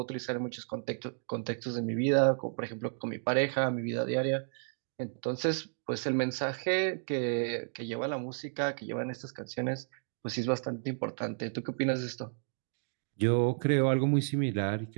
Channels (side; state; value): left; silent; digital silence